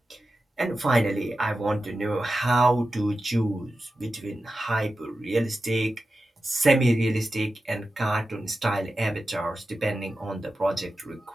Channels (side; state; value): both; normal; correlation 0.92